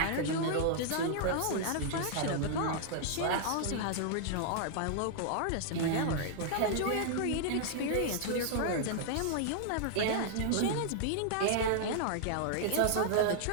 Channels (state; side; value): different; both; correlation -0.01